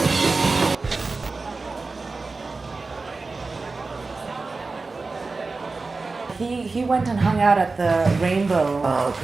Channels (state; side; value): quieter; left; 3.9 dB